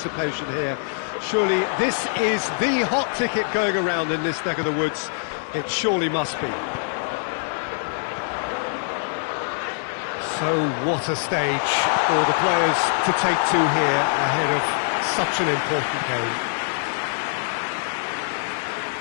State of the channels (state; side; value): silent; right; digital silence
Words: here. Surely this is the hot ticket going around in this neck of the woods. It surely must be. So what a stage for the players to take to here ahead of such an important game.